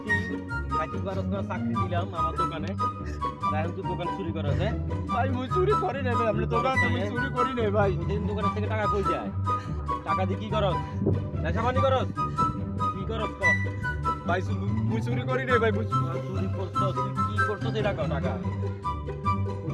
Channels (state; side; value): identical; both; correlation 1.00